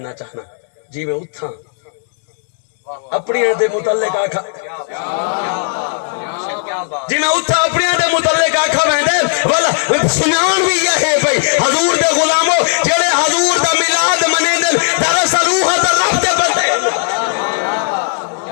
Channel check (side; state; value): right; silent; digital silence